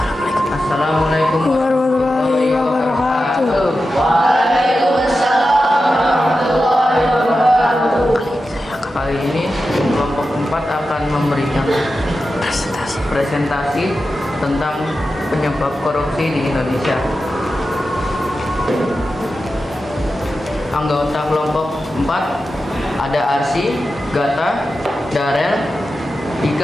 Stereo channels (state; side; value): normal; both; correlation 0.91